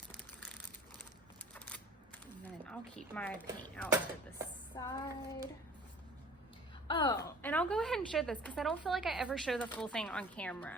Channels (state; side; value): normal; both; correlation 0.48